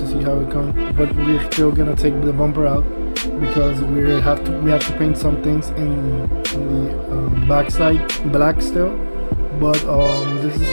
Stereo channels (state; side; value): inverted; both; correlation -1.00